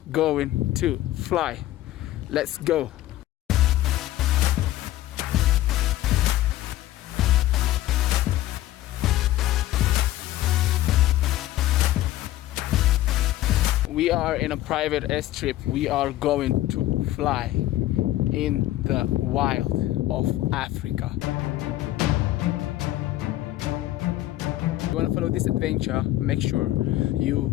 going to fly. Let's go. We are in a private airstrip. We are going to fly in the wild of Africa. If you want to follow this adventure, make sure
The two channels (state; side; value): quieter; right; 15.1 dB